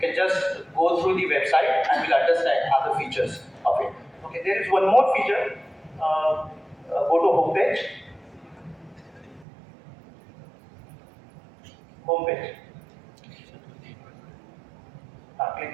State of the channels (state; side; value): drops out; left; at 9.5 s